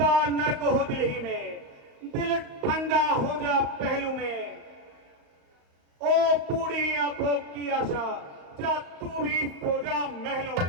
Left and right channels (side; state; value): left; late; 35 ms